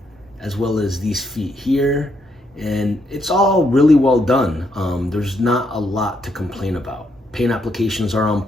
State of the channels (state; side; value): normal; both; correlation 0.76